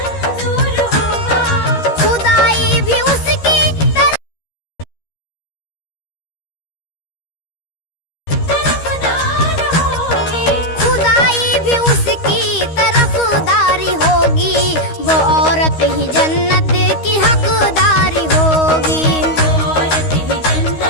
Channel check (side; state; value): right; late; 13 ms